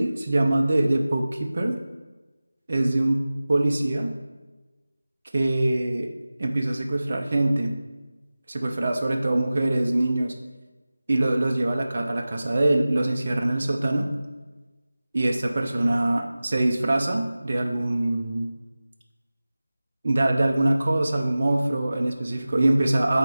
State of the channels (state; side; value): inverted; both; correlation -0.97